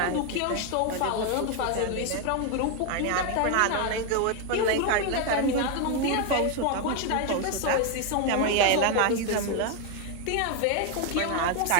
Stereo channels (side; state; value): both; different; correlation 0.01